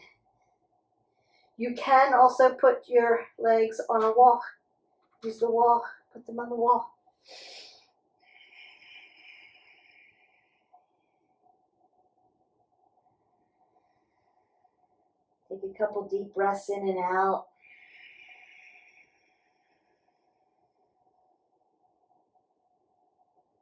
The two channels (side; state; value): both; identical; correlation 1.00